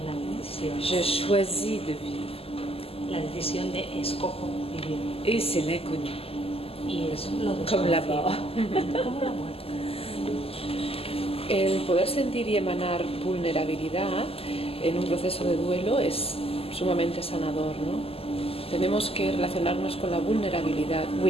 una decisión. Je choisis de vivre. La decisión de escojo vivir. Et c'est l'inconnu. Y es lo Comme la desconocido. mort. Como la muerte. El poder sentir y emanar vulnerabilidad en un proceso de duelo es sumamente sanador, ¿no? Tenemos que relacionarnos con la vulnerabilidad,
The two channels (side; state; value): right; late; 0.28 ms